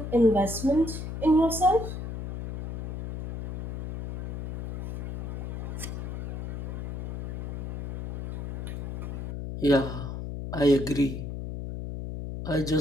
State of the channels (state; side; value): noise; left; hum, 5 dB below the sound